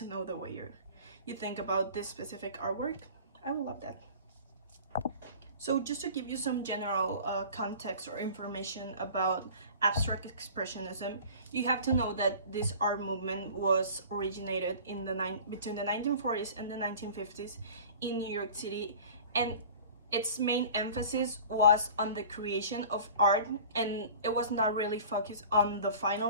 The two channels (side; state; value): both; inverted; correlation -0.42